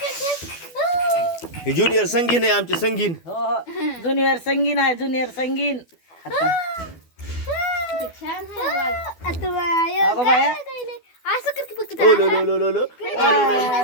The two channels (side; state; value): right; late; 12 ms